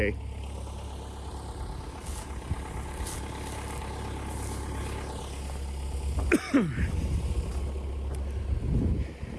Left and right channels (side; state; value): both; identical; correlation 1.00